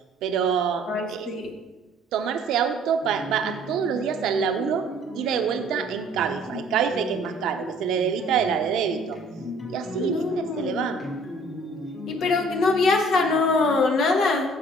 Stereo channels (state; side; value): normal; both; correlation 0.55